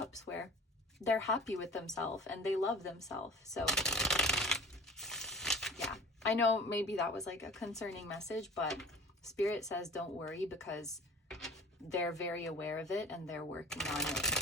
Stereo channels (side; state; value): both; normal; correlation 0.41